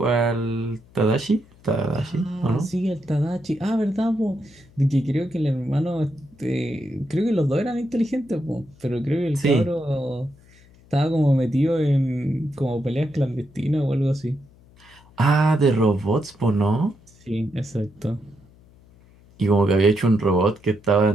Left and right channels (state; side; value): noise; left; hum, 27 dB below the sound